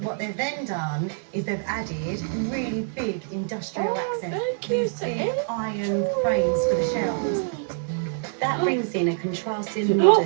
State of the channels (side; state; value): left; silent; 61 dB below the other